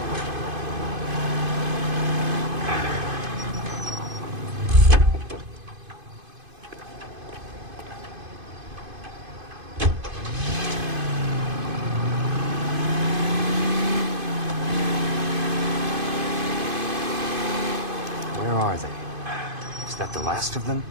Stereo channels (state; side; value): late; left; 2.5 ms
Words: Where are they? Is that the last of them?